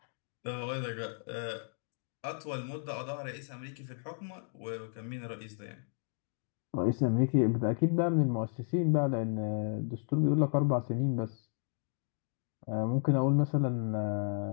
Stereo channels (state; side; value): silent; right; digital silence